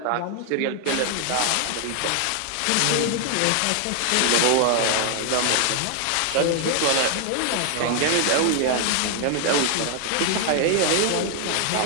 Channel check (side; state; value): both; different; correlation 0.00